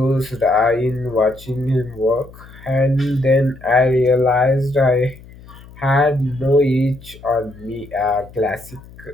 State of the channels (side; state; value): left; noise; hum, 20 dB below the sound